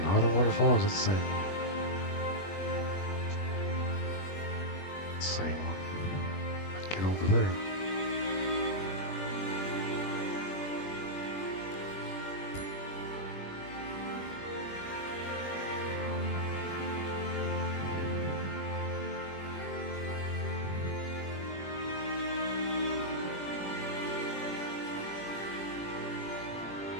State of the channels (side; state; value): right; late; 21 ms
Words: the waterfalls, it's the same. Same one. Get over there.